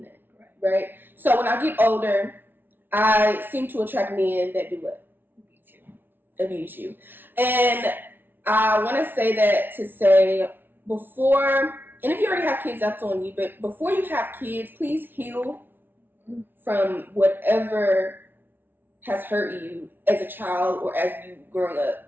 that, right? So when I get older, I seem to attract men that do what? Abuse you. And I want to say that to say, before, and if you already have kids, that's on you, but before you have kids, please heal from whatever has hurt you as a child or as you growing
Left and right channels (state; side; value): late; left; 0.098 ms